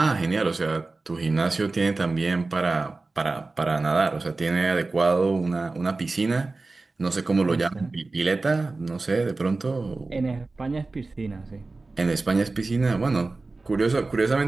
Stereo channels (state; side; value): quieter; left; 3.5 dB